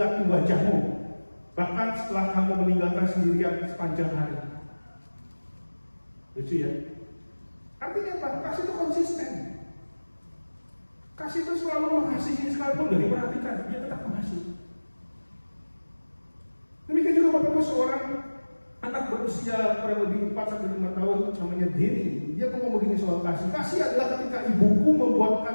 wajahmu, bahkan setelah kamu meninggalkan sendirian sepanjang hari. Lucu ya? Artinya apa? Kasih itu konsisten. Kasih itu selalu mengasihi, sekalipun gak diperhatikan, dia tetap mengasihi. Demikian juga Bapak Ibu, seorang anak berusia kurang lebih 4-5 tahun namanya Denny. Dia ngomong begini soal kasih. Kasih adalah ketika ibuku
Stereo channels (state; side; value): inverted; both; correlation -1.00